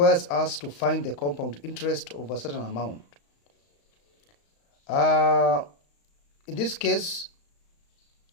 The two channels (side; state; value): right; late; 35 ms